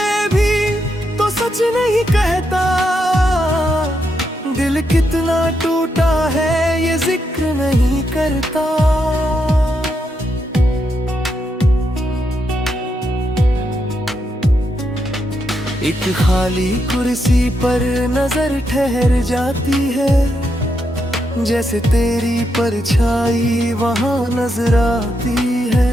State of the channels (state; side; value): normal; both; correlation 0.81